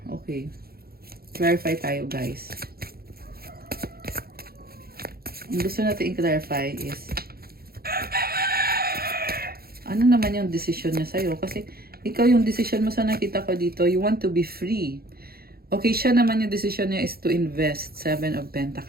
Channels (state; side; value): late; left; 0.44 ms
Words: okay. Clarify tayo, guys. Ang gusto natin i-clarify is ano naman yung decision niya sa'yo? Kasi ikaw yung decision mo sa nakita ko dito, you want to be free. Okay, siya naman yung decision niya is to invest. 7 of